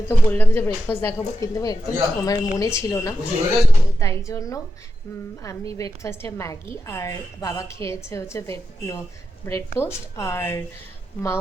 তো বললাম যে ব্রেকফাস্ট দেখাবো, কিন্তু একদম আমার মনে ছিল না। তাই জন্য আমি ব্রেকফাস্টে ম্যাগি, আর বাবা খেয়েছে হচ্ছে ব্রেড টোস্ট, আর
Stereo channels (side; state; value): both; normal; correlation 0.88